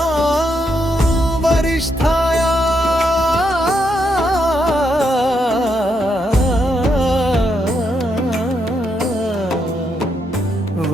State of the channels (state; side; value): normal; both; correlation 0.79